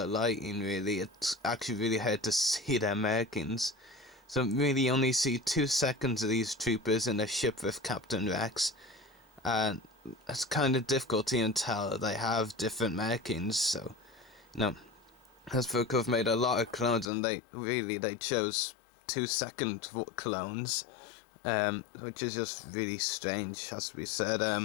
lighting, really, it's actually really hard to see their markings. So really only see 2 seconds of these troopers in a ship with Captain Rex, and it's kind of difficult to even tell they have different markings, so, Hasbro have made a lot of clones, and they chose 2-second clones, which is just really strange, has to be said.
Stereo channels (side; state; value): right; drops out; at 17.1 s